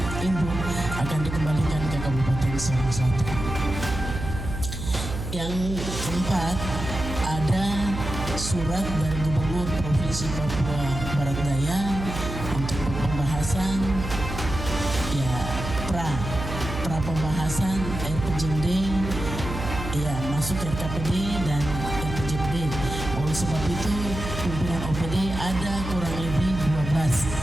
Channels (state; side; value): noise; right; hum, 6 dB below the sound